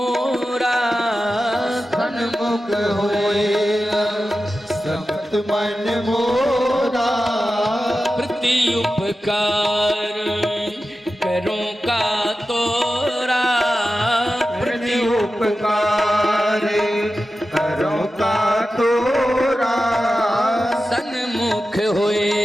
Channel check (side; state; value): both; normal; correlation 0.93